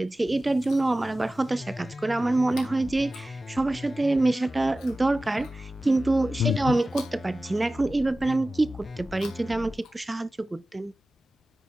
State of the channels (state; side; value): normal; both; correlation 0.96